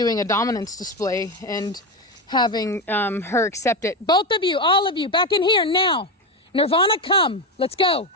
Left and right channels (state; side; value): normal; both; correlation 0.14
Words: a dominance display and having her accept it. Both of you, all of you, back in here now. Nirvana, come. Let's go.